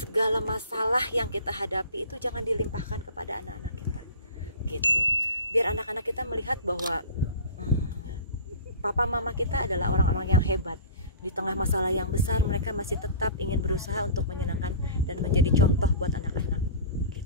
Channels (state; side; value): inverted; both; correlation -0.40